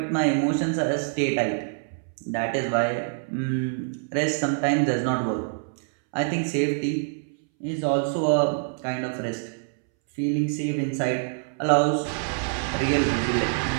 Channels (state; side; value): silent; left; 61 dB below the other